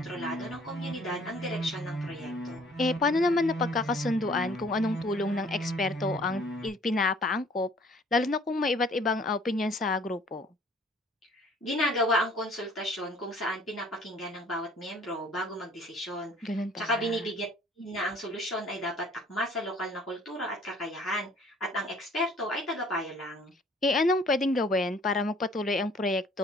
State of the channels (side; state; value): both; normal; correlation 0.56